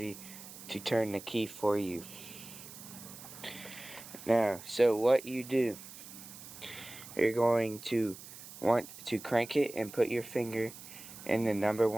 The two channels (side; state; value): right; noise; hiss, 15 dB below the sound